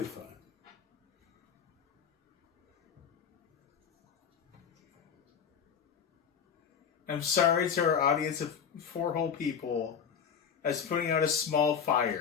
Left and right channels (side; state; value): right; quieter; 7.3 dB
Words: fine. I'm sorry to our audience of 4 whole people as putting out a small